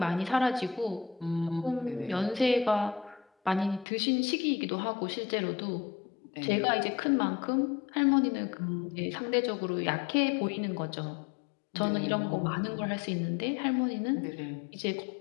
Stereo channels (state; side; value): drops out; right; at 3.9 s